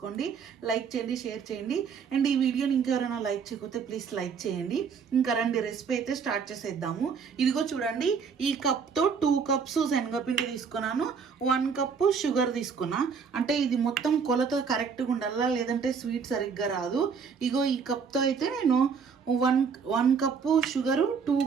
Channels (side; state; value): left; quieter; 6.1 dB